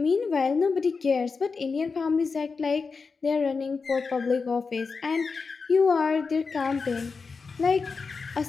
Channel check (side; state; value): right; quieter; 4.8 dB